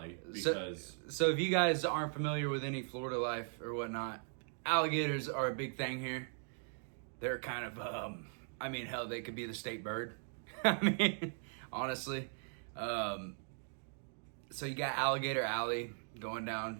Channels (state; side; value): silent; left; 52 dB below the other